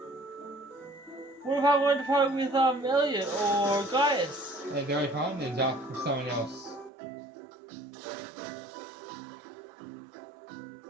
What if I wanted to partner with Elliot or Gaius? They're only partners up with someone else.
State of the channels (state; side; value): drops out; left; at 6.9 s